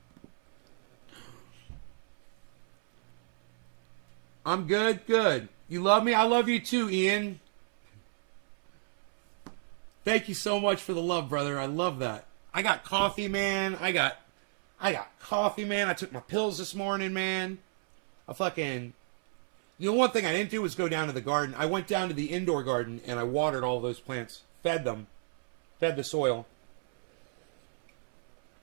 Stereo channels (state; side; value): silent; left; 57 dB below the other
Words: I'm good, good. You love me? I love you too, Ian. Thank you so much for the love, brother. I love that. I got coffee, man. I got coffee, man. I took my pills this morning, man. The one thing I didn't do was go down to the garden. I went down to the indoor garden and I watered all those plants. Fed them. Fed the soil.